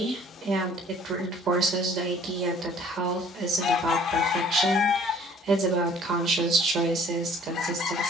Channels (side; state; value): both; normal; correlation 0.54